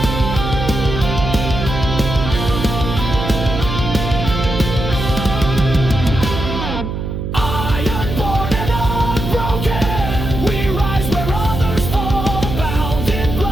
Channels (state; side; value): noise; right; hum, 5 dB below the sound